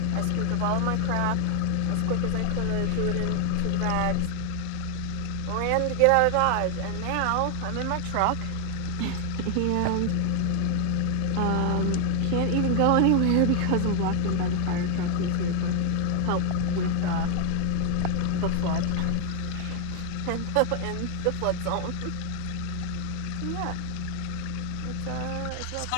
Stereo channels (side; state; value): both; different; correlation 0.00